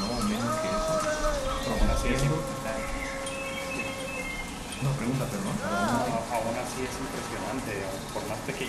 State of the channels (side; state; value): both; identical; correlation 1.00